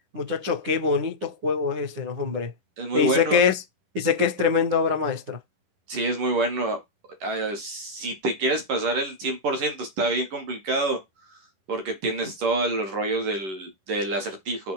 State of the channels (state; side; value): late; left; 11 ms